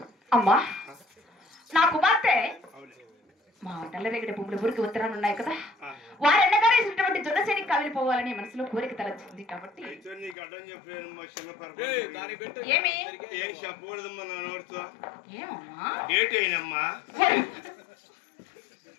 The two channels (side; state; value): right; drops out; at 10.4 s